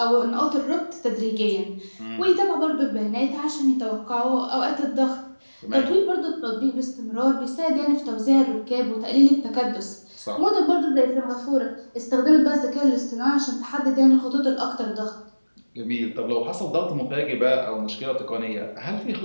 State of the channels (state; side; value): inverted; both; correlation -1.00